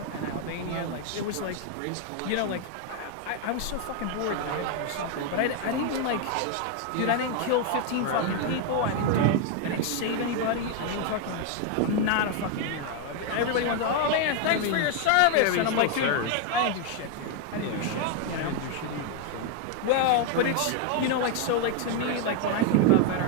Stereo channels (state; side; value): different; both; correlation 0.01